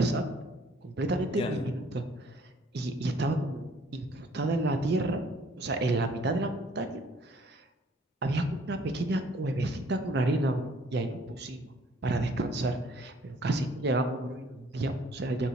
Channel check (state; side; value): normal; both; correlation 0.59